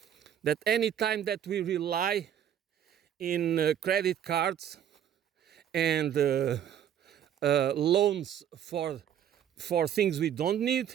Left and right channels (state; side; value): quieter; left; 9.8 dB